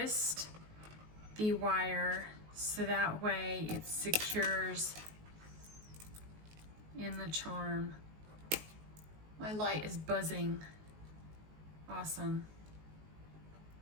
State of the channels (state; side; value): late; left; 19 ms